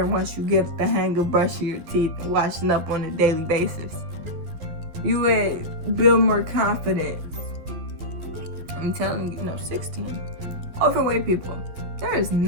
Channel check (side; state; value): left; late; 12 ms